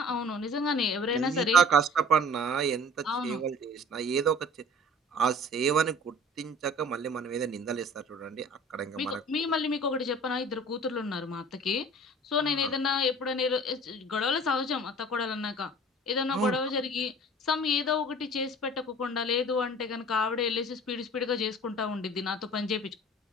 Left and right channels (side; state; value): both; normal; correlation 0.46